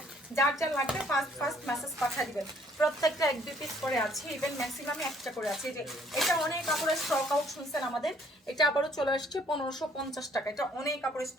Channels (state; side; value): normal; both; correlation 0.62